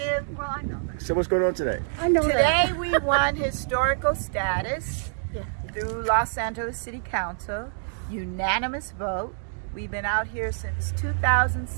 Well, I know that. So what's going on today? I know Today that. we won historical status Yeah. through Los Angeles City Council. Unanimous vote. We've been out here since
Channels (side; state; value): left; silent; digital silence